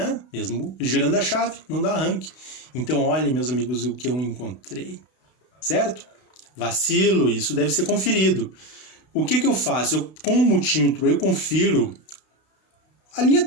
Mesmo girando a chave, não dá arranque. Então, olhem, meus amigos, o que eu encontrei, certo? Vacilo, isso deve ser conferido. O que eu faço? Com o multímetro, eu confiro a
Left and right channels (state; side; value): late; right; 32 ms